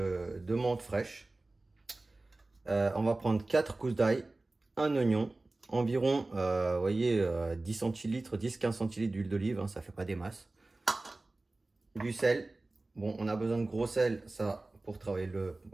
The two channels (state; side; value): quieter; left; 3.0 dB